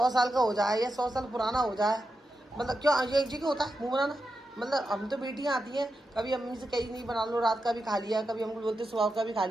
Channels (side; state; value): both; normal; correlation 0.88